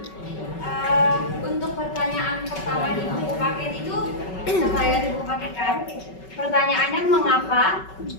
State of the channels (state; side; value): late; right; 5.3 ms